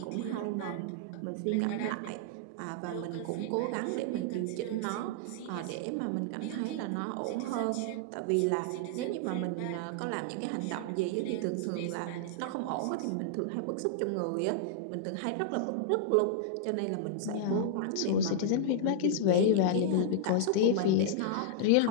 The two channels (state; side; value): different; both; correlation -0.01